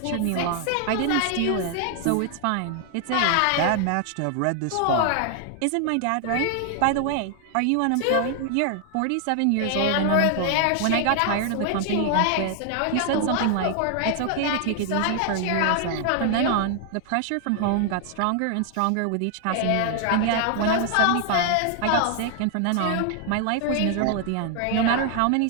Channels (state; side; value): different; both; correlation 0.00